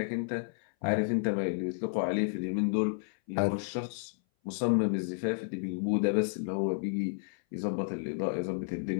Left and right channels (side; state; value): right; silent; 57 dB below the other